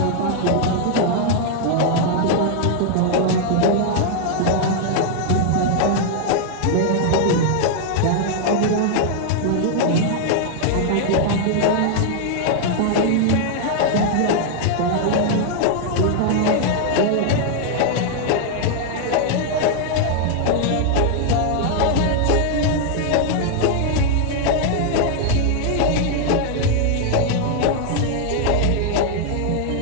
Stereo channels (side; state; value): both; different; correlation 0.00